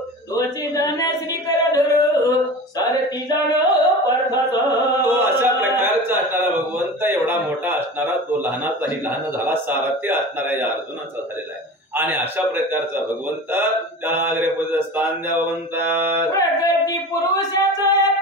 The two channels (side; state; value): both; normal; correlation 0.34